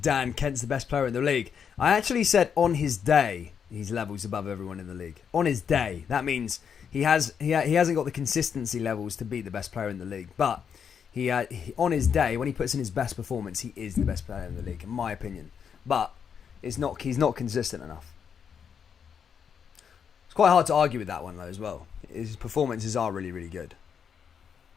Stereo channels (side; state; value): right; quieter; 7.3 dB